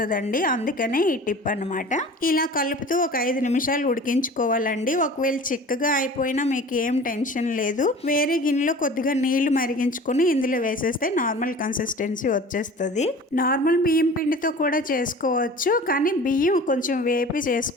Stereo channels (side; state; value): both; normal; correlation 0.41